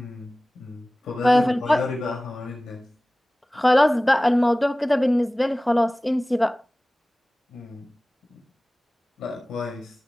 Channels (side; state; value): both; normal; correlation 0.98